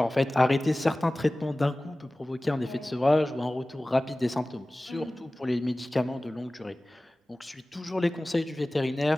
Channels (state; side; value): normal; both; correlation 0.98